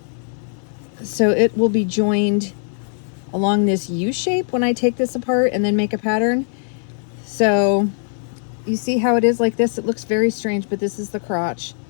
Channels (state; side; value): silent; right; digital silence